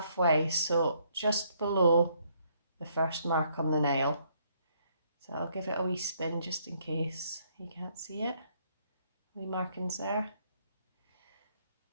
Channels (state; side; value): inverted; both; correlation -0.70